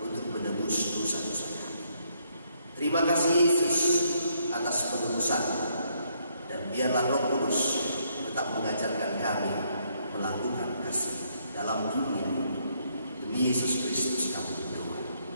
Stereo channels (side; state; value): both; inverted; correlation -0.72